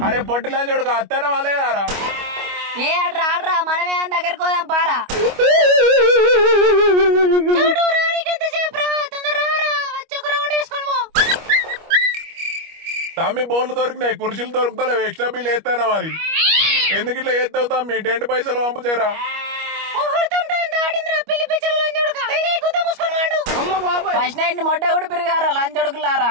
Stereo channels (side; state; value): left; late; 25 ms